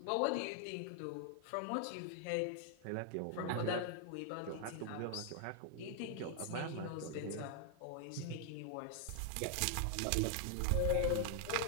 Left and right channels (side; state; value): both; different; correlation 0.00